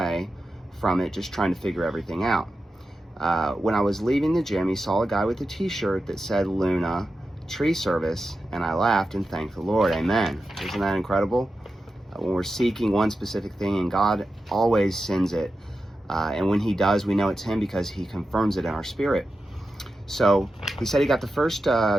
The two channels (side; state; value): both; normal; correlation 0.91